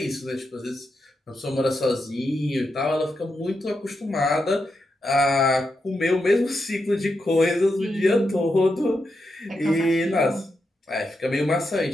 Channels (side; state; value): both; normal; correlation 0.85